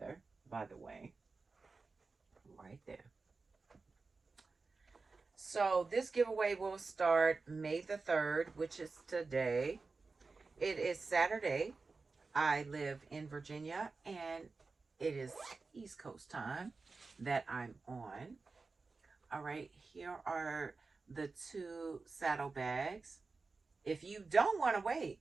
by the way, right there. So this giveaway will start May the 3rd, which is today. It is Saturday. I live in Virginia, and it is East Coast time that I'm on. All right, here are the 2 saddle bags. If you don't want to wait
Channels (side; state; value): left; quieter; 4.1 dB